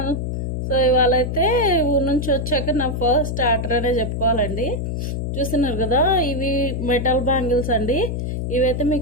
So ఇవాళ అయితే ఊరు నుంచి వచ్చాక నా ఫస్ట్ ఆర్డర్ అనే చెప్పుకోవాలండి. చూస్తున్నారు కదా, ఇవి మెటల్ బ్యాంగిల్స్ అండి. ఇవైతే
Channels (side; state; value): left; noise; hum, 2 dB below the sound